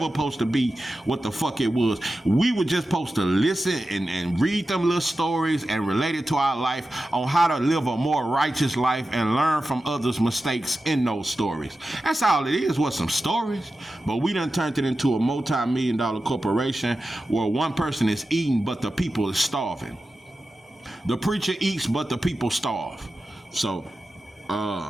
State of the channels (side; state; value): both; normal; correlation 0.93